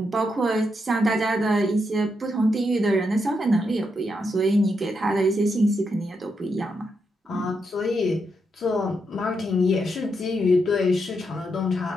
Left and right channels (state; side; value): normal; both; correlation 0.82